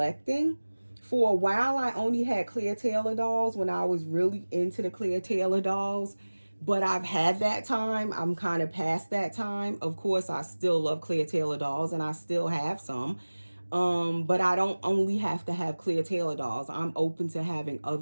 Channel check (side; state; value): both; inverted; correlation -1.00